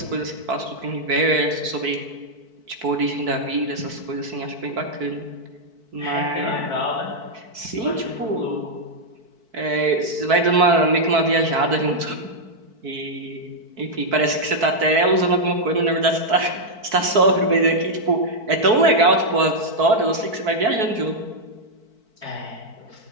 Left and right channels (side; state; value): left; late; 4.5 ms